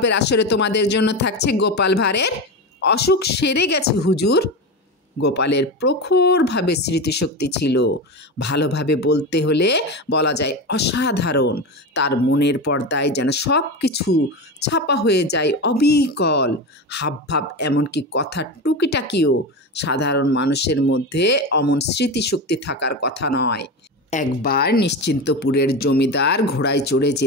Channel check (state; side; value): normal; both; correlation 0.21